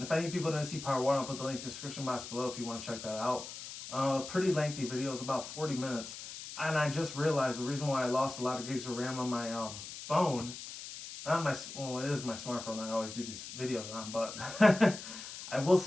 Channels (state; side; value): noise; left; hiss, 11 dB below the sound